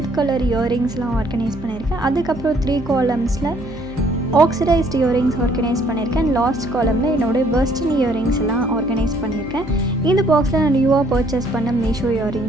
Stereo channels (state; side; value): noise; right; hum, 16 dB below the sound